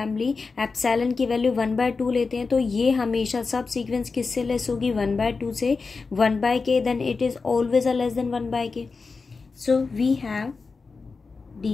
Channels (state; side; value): quieter; right; 4.4 dB